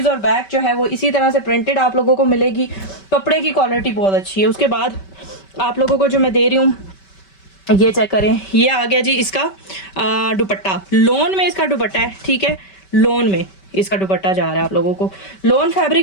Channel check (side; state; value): right; late; 5.2 ms